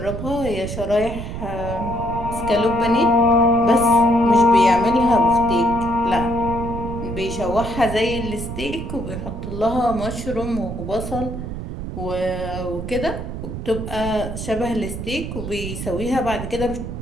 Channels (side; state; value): right; noise; rumble, 7 dB below the sound